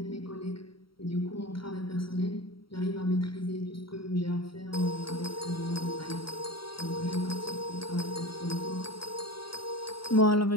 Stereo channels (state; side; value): late; right; 0.74 ms